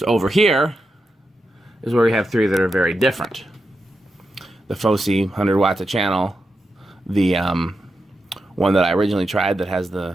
over here is where we have 3 that are very different. The Fosi 100 watts a channel, the one that I originally tried that has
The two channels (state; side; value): normal; both; correlation 0.88